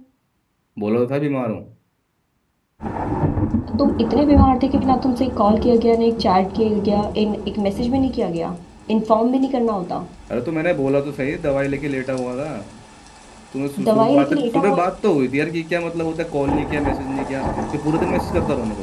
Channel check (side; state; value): both; identical; correlation 1.00